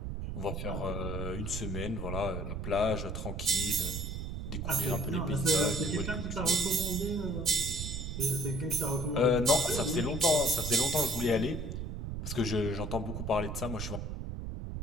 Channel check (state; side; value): noise; right; rumble, 5 dB below the sound